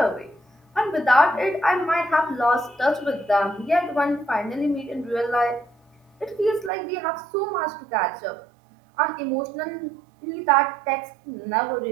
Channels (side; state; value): left; drops out; at 6.7 s